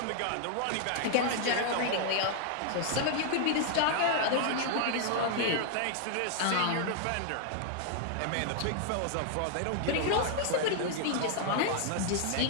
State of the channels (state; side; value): different; both; correlation 0.00